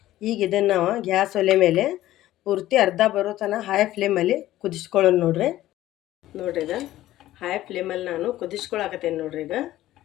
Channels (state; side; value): quieter; right; 14.7 dB